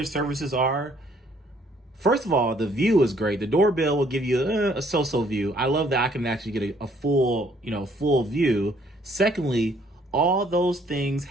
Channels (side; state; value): both; normal; correlation 0.64